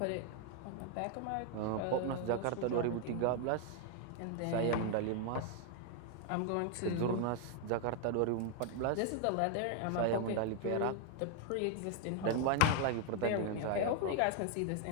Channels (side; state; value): both; different; correlation 0.00